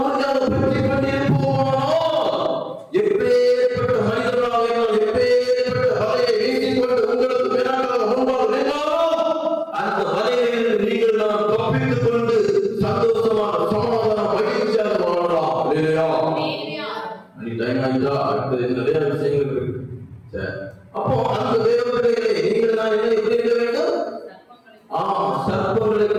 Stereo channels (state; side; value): identical; both; correlation 1.00